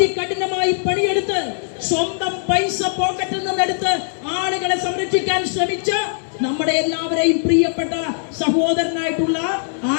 പണിയെടുത്ത് സ്വന്തം പൈസ പോക്കറ്റിൽ നിന്നെടുത്ത് ആളുകളെ സംരക്ഷിക്കാൻ ശ്രമിച്ച നമ്മുടെ എല്ലാവരെയും പ്രിയപ്പെട്ട സഹോദരനായിട്ടുള്ള ആ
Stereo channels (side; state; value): right; silent; digital silence